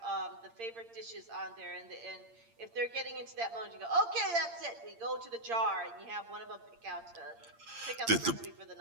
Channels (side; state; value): left; late; 8.7 ms